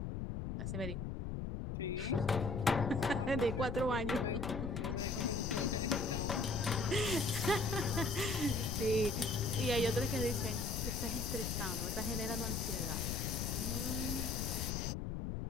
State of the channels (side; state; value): left; noise; rumble, 3 dB below the sound